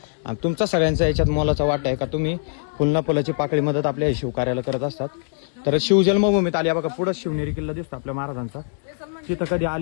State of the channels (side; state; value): right; silent; digital silence